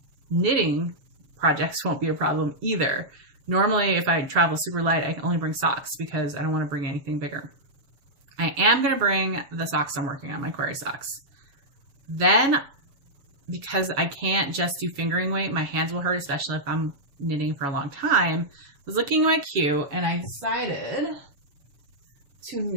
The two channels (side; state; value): left; late; 7.2 ms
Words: knitting projects won't be a problem either. Normally, if I travel super light, I can only bring socks because I don't want to bring anything bigger. I am going to bring the socks I'm working on, my query socks. Then, because I can't just do fingering weight, my hands will hurt, especially if I'm knitting for a long time. I was looking at my queue, and I decided to